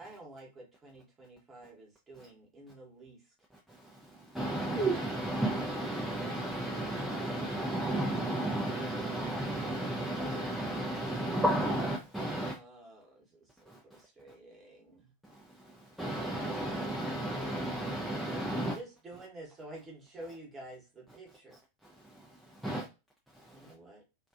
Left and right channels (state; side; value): normal; both; correlation 0.66